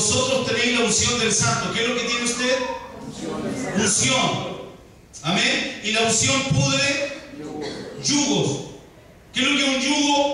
tenéis la unción del Santo. ¿Qué es lo que tiene usted? Unción. Amén. Y la unción pudre yugos. ¿Qué es lo que es un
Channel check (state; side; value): identical; both; correlation 1.00